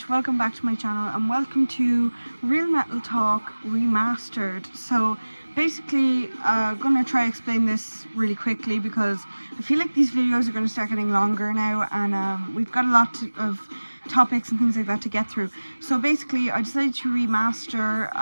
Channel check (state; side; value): inverted; both; correlation -1.00